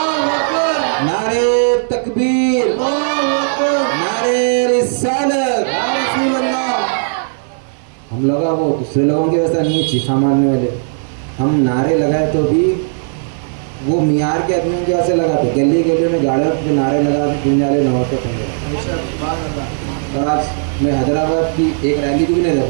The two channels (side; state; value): left; silent; 57 dB below the other